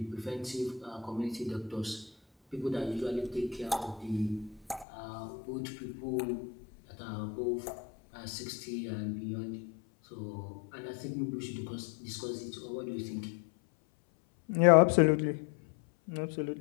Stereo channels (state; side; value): drops out; right; at 4.9 s